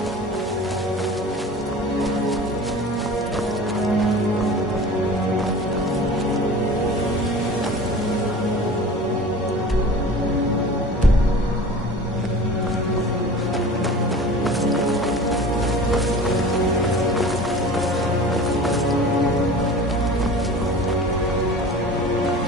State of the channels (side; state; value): both; normal; correlation 0.39